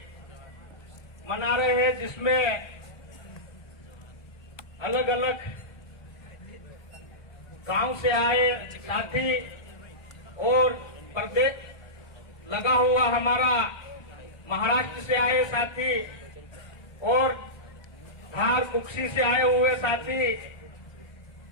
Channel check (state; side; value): late; right; 1.2 ms